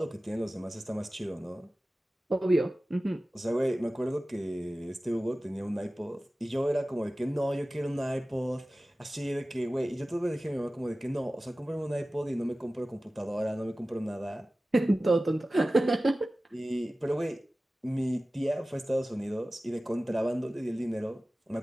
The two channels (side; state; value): both; normal; correlation 0.96